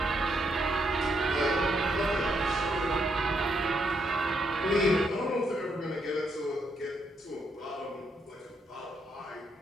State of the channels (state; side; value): normal; both; correlation 0.77